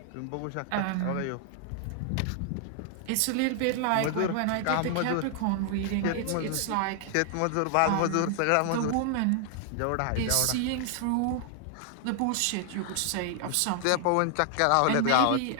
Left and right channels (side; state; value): both; different; correlation 0.00